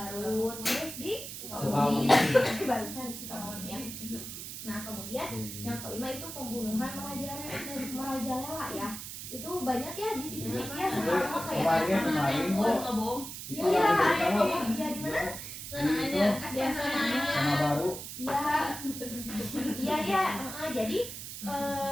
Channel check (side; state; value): right; noise; hiss, 9 dB below the sound